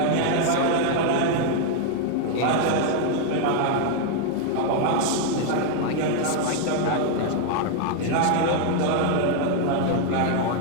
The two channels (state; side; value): different; both; correlation 0.00